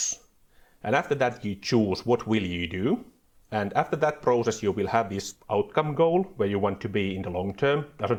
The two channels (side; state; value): both; identical; correlation 1.00